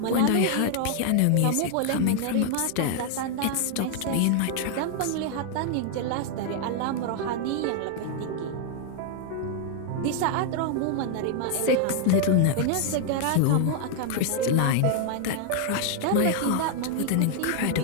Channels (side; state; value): both; different; correlation 0.00